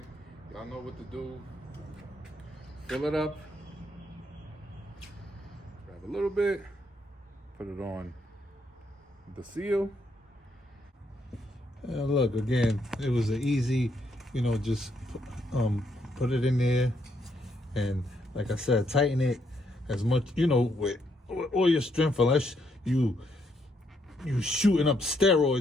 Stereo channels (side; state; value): both; normal; correlation 0.75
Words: Y'all know what to do. Fill it up. Grab a little bit. Put it on the seal. And look, again, it was an easy, you know, just put it in there. And like I said, tighten it as much, you know, with all your strength, unless you shooting up